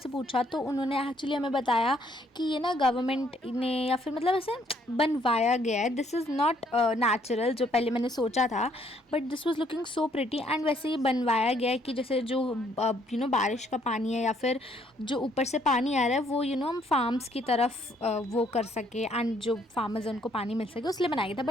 पूछा तो उन्होंने एक्चुअली हमें बताया कि ये ना गवर्नमेंट ने या फिर मतलब ऐसे बनवाया गया है, दिस इज़ नॉट नेचुरल जो पहले मैंने सोचा था, but this was looking so pretty. And वैसे ये बनवाया गया है कि जैसे जो बारिश का पानी है या फिर जो ऊपर से पानी आ रहा है वो हम फार्म्स की तरफ वो कर सके एंड जो फार्मर्स हैं उनको पानी मिल सके, उसलिए बनाया गया था।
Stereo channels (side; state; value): both; normal; correlation 0.67